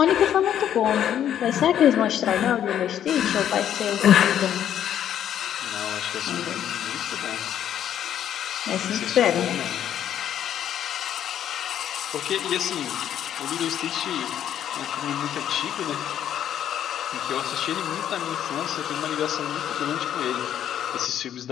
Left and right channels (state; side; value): quieter; right; 10.3 dB